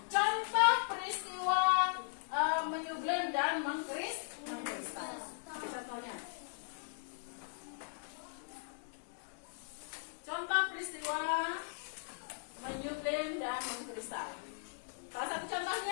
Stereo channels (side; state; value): right; silent; digital silence